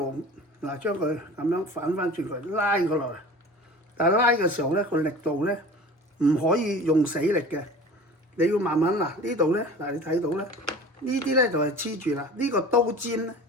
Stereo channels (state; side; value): normal; both; correlation 0.39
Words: 將佢咁樣反翻轉佢，拉佢落嚟。但係拉嘅時候咧，個力度咧唔可以用死力嘅，你要慢慢呢度咧，你睇到咧，呢啲咧就係黐住啦，呢個刀尖咧